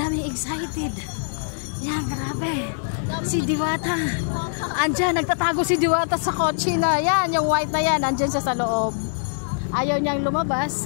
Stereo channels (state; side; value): silent; right; digital silence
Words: excited. Yan, grabe. Si Diwata. Andyan, nagtatago si Diwata sa kotse na. Yan, yung white na yan. Andyan siya sa loob. Ayaw niyang